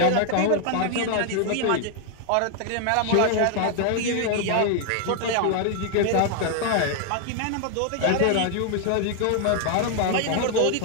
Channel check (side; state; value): both; different; correlation 0.00